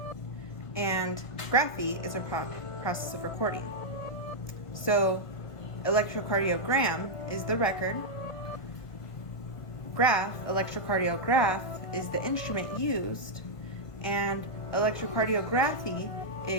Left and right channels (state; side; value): late; right; 1.3 ms